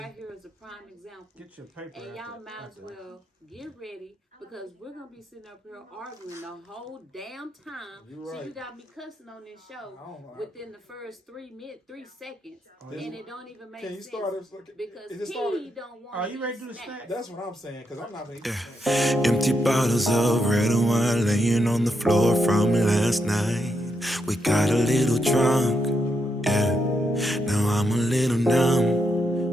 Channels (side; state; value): both; normal; correlation 0.81